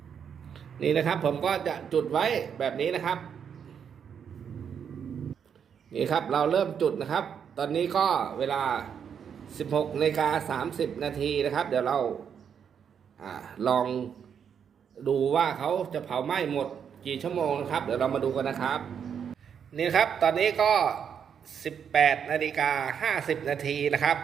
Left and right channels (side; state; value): left; quieter; 7.7 dB